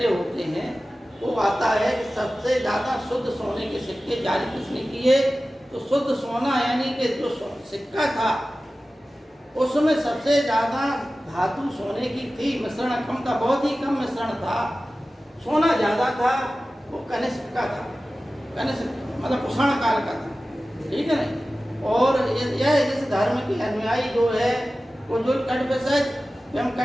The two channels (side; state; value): both; normal; correlation 0.96